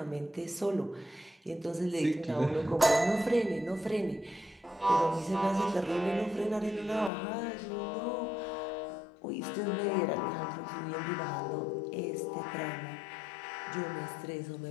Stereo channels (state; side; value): drops out; right; at 7.1 s